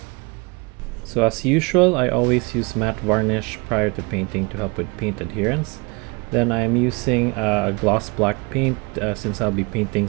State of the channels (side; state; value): left; quieter; 28.9 dB